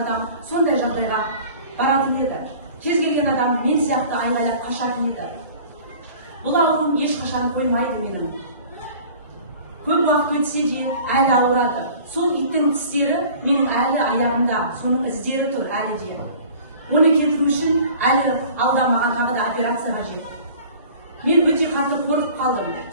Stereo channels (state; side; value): inverted; both; correlation -0.46